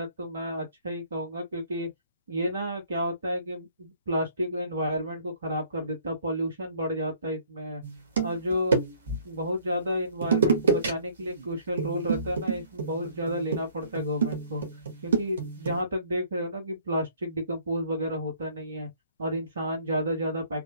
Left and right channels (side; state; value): both; inverted; correlation -0.59